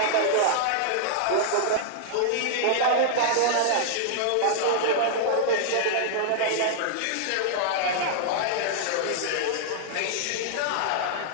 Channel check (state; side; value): different; both; correlation -0.01